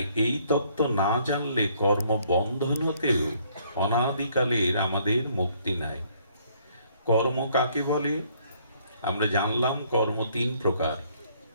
এই তত্ত্ব না জানলে কর্ম বন্ধন হতেও অনাদিকালের আমাদের মুক্তি নাই। কর্ম কাকে বলে? আমরা জানলাম কর্ম তিন প্রকার।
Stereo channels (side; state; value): both; inverted; correlation -0.64